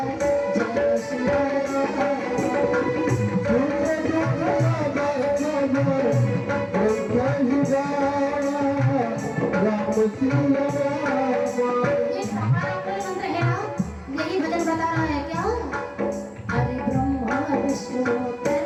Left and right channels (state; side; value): identical; both; correlation 1.00